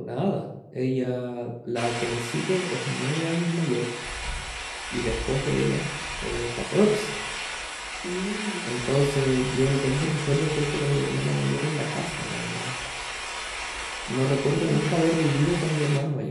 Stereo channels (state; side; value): identical; both; correlation 1.00